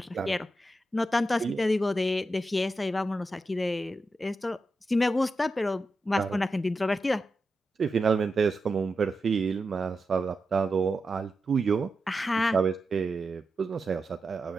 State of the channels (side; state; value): both; normal; correlation 0.88